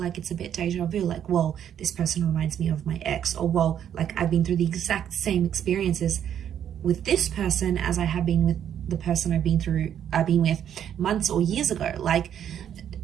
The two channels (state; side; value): quieter; left; 9.6 dB